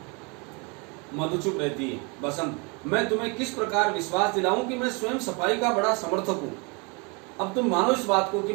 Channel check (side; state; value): left; quieter; 31.3 dB